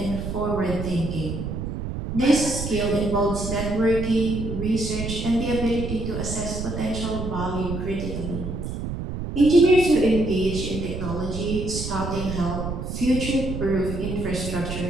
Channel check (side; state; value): right; noise; rumble, 5 dB below the sound